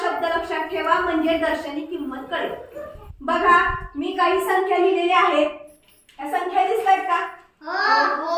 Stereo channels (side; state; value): both; identical; correlation 1.00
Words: शब्द लक्षात ठेवा, म्हणजे दर्शनी किंमत कळेल। बघा, मी काही संख्या लिहिलेल्या आहेत, या संख्या दिसतायत का?